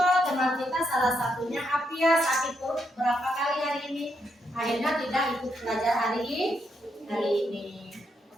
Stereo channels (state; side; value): normal; both; correlation 0.79